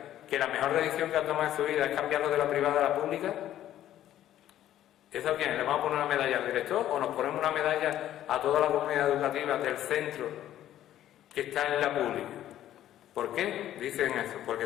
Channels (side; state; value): right; quieter; 12.3 dB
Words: que la mejor decisión que han tomado en su vida es cambiarlo de la privada a la pública. ¿Eso a quién? ¿Le vamos a poner una medalla al director o nos ponemos una medalla a toda la comunidad educativa del centro que está en la pública? ¿Por qué dicen eso?